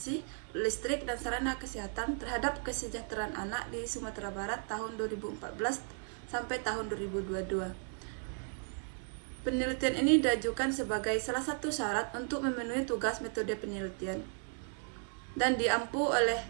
Listrik, dan Sarana Kesehatan terhadap Kesejahteraan Anak di Sumatera Barat tahun 2014 sampai tahun 2022. Penelitian ini diajukan sebagai salah satu syarat untuk memenuhi tugas metode penelitian dan diampu oleh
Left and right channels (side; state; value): left; silent; 54 dB below the other